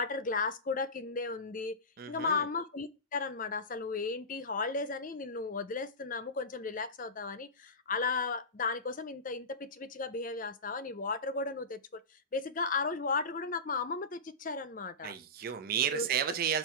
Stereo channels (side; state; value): both; normal; correlation -0.18